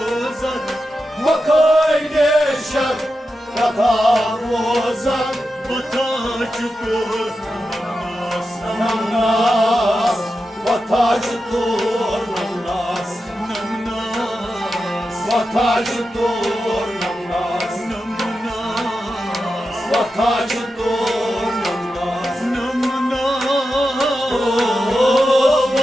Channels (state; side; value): normal; both; correlation 0.90